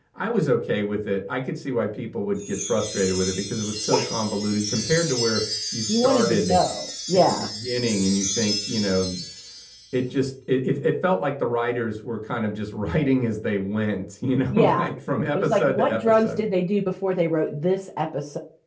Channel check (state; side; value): identical; both; correlation 1.00